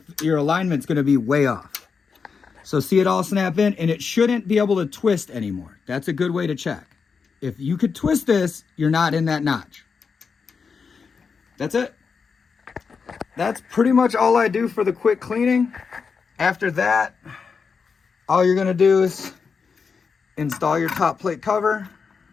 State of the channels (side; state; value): right; quieter; 5.5 dB